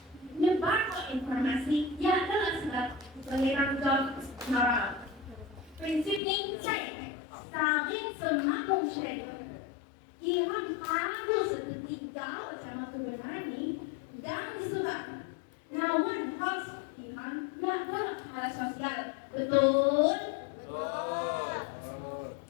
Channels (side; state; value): right; drops out; at 6.2 s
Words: Nyebar informasi yang adalah sebab pengiran job moral. Prinsip ini saya saling semakin share. Iman harus ketiga sama kebenaran ini dan disebabkan. Namun harus iman yang adalah hal sosial Betul?